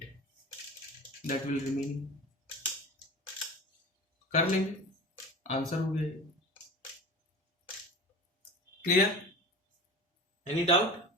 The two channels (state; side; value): normal; both; correlation 0.34